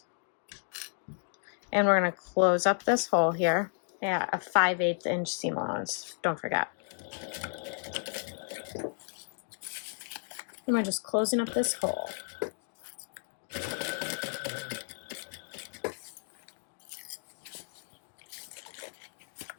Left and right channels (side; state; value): right; silent; digital silence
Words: And we're going to close up this hole here at a 5/8 inch seam allowance. Don't forget. And we're just closing up this hole.